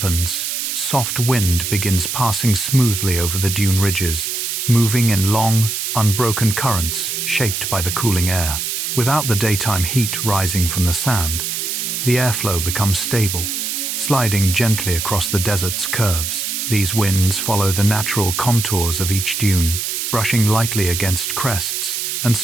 soft wind begins passing smoothly over the dune ridges, moving in long, unbroken currents shaped by the cooling air. Without the daytime heat rising from the sand, the airflow becomes stable, sliding gently across the desert's curves. These winds follow the natural contours of each dune, brushing lightly against crests and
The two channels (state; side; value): noise; right; hiss, 2 dB below the sound